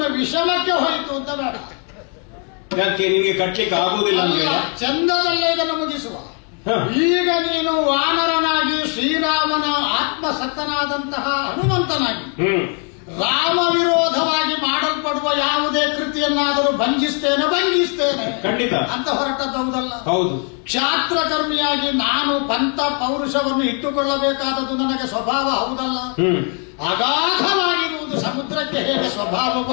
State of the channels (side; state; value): right; quieter; 39.9 dB